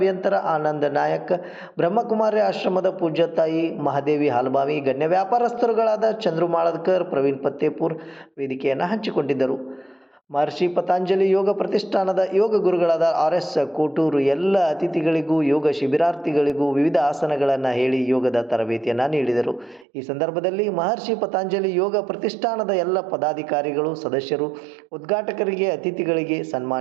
ಆನಂದ್ ನಾಯಕ್, ಬ್ರಹ್ಮಕುಮಾರಿ ಆಶ್ರಮದ ಪೂಜ್ಯ ತಾಯಿ ಮಹಾದೇವಿ ಹಾಲ್ಬಾವಿ, ಗಣ್ಯ ವ್ಯಾಪಾರಸ್ಥರುಗಳಾದ ಚಂದ್ರು ಮಾಳದ್ಕರ್, ಪ್ರವೀಣ್ ಪತ್ತೇಪುರ್ ವೇದಿಕೆಯನ್ನು ಹಂಚಿಕೊಂಡಿದ್ದರು. ಮಹರ್ಷಿ ಪತಂಜಲಿ ಯೋಗ ಪ್ರತಿಷ್ಠಾನದ ಯೋಗ ಗುರುಗಳಾದ ಆರ್.ಎಸ್. ಕೋಟೂರು ಎಲ್ಲ ಅತಿಥಿಗಳಿಗೂ ಯೋಗ ಶಿಬಿರಾರ್ಥಿಗಳಿಗೂ ವಿವಿಧ ಆಸನಗಳನ್ನು ಹೇಳಿ ಯೋಗದ ತರಬೇತಿಯನ್ನು ನೀಡಿದರು. ಈ ಸಂದರ್ಭದಲ್ಲಿ ಮಹರ್ಷಿ ಪತಂಜಲಿ ಯೋಗ ಪ್ರತಿಷ್ಠಾನದ ಎಲ್ಲ ಪದಾಧಿಕಾರಿಗಳು, ಸದಸ್ಯರು, ಉದ್ಘಾಟಕರಿಗೆ, ಅತಿಥಿಗಳಿಗೆ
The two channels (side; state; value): left; drops out; at 19.9 s